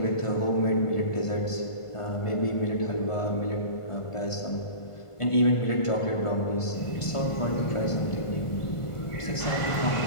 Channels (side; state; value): right; late; 1.5 ms